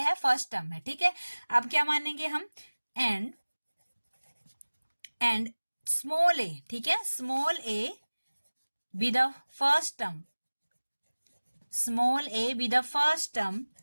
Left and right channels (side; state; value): both; inverted; correlation -1.00